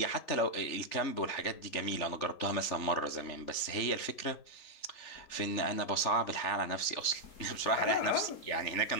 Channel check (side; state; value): right; late; 3.4 ms